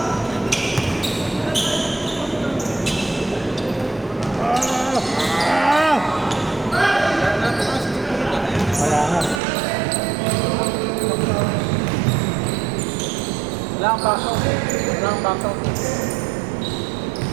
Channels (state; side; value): drops out; left; at 9.4 s